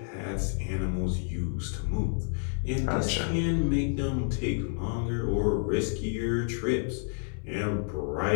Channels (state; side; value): silent; right; 58 dB below the other